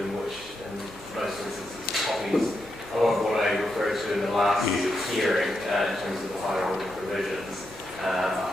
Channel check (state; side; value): normal; both; correlation 0.84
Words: which in most instances copies a lot of what I referred to in the last hearing in terms of the higher order provisions.